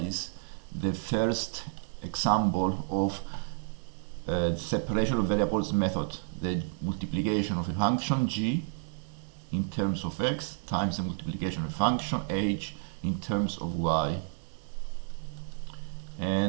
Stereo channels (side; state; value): left; silent; 57 dB below the other